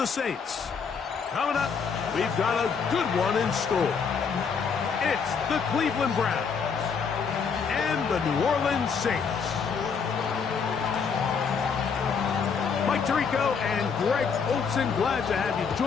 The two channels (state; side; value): quieter; right; 6.0 dB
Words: Saints. Coming up, we've got a good one in store. It's the Cleveland Browns and the New Orleans Saints. Mike Tirico and Greg Olsen, glad to have you